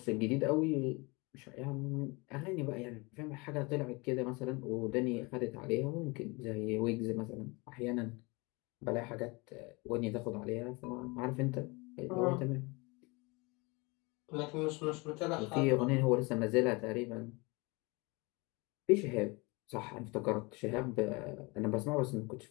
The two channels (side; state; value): right; quieter; 26.7 dB